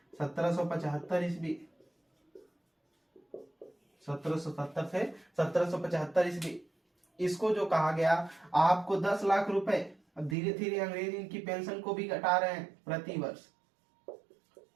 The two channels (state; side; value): drops out; left; at 10.4 s